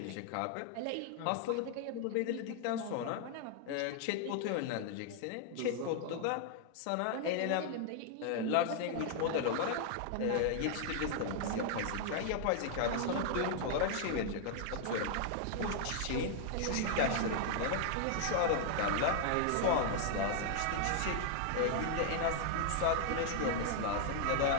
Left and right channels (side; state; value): both; different; correlation 0.00